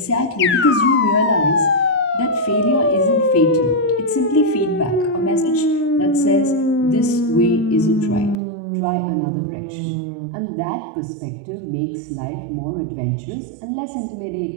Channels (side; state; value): left; drops out; at 8.3 s